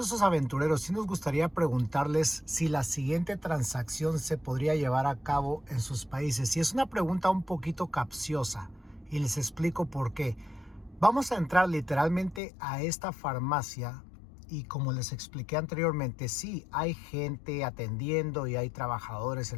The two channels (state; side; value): drops out; right; at 12.4 s